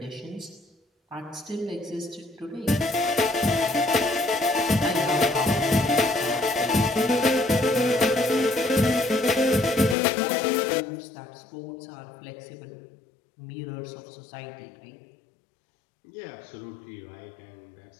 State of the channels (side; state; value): right; drops out; at 10.0 s